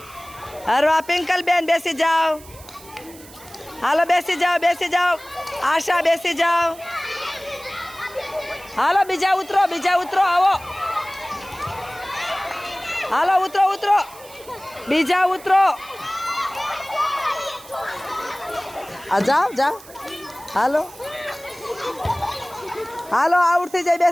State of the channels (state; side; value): noise; right; hiss, 20 dB below the sound